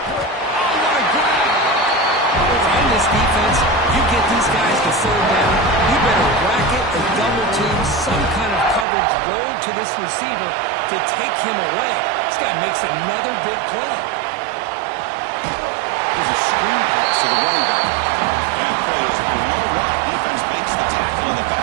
what a grab! If I'm this defense, you get these guys to 3rd down, you better bracket or double team some kind of coverage roll to this receiver to take him away. This guy makes another big play. There's a screen pass to the running back. That play is blown up. Defense makes the tackle in the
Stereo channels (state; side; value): drops out; left; at 8.8 s